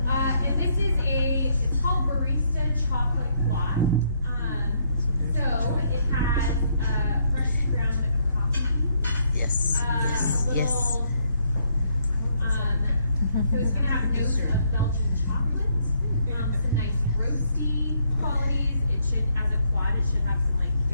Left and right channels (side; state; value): both; inverted; correlation -0.72